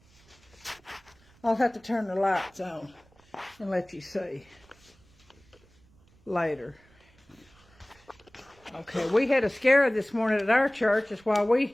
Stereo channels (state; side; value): noise; right; rumble, 30 dB below the sound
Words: I'll have to turn the lights on and let you see later. Okay, we had a scare this morning at our church. That's why